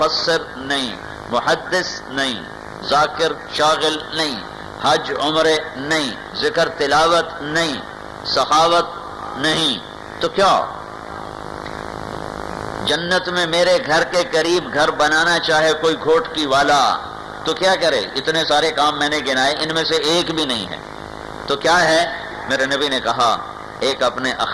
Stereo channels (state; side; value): identical; both; correlation 1.00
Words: نہیں، محدث نہیں، ذاکر شاغل نہیں، حج عمرے نہیں، ذکر تلاوت نہیں، سخاوت نہیں، تو کیا جنت میں میرے گھر کے قریب گھر بنانا چاہے کوئی گھوٹکی والا تو کیا کرے؟ اتنے سارے کام میں نے گنائے، ان میں سے ایک بھی نہیں ہے، تو کیا ہے؟ میرے نبی نے کہا ایک اپنے